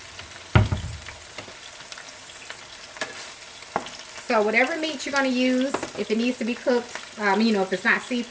So whatever meat you're going to use, if it needs to be cooked, if it's not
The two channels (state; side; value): identical; both; correlation 1.00